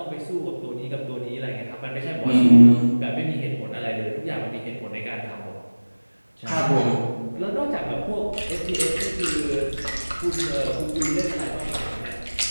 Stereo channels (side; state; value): both; inverted; correlation -1.00